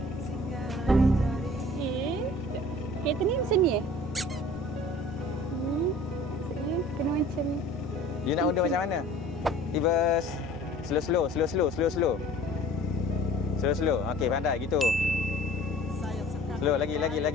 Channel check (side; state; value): both; normal; correlation 0.47